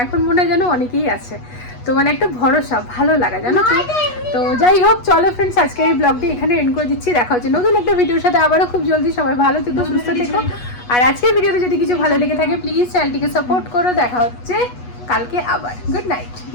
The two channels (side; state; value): right; late; 8.2 ms